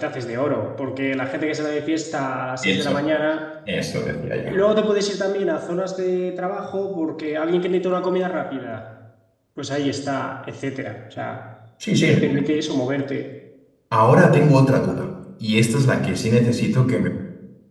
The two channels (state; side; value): identical; both; correlation 1.00